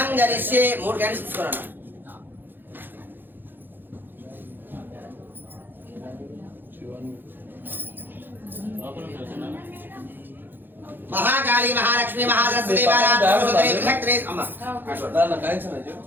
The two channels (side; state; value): left; late; 0.095 ms